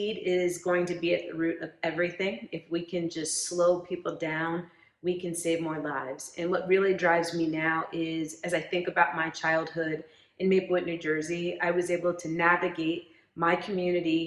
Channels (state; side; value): identical; both; correlation 1.00